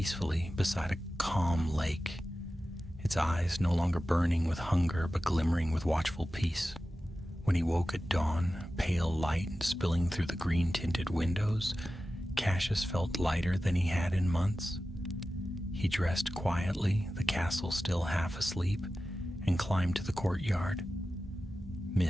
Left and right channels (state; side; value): normal; both; correlation 0.94